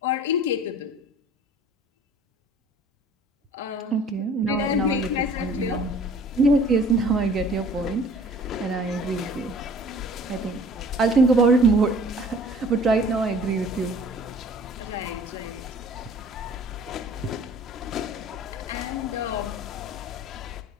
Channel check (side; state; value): both; normal; correlation 0.50